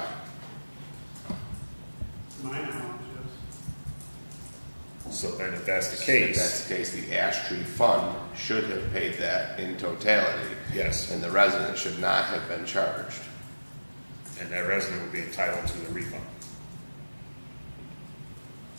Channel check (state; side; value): inverted; both; correlation -1.00